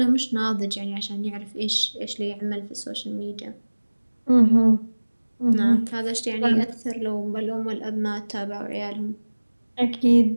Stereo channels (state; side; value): inverted; both; correlation -1.00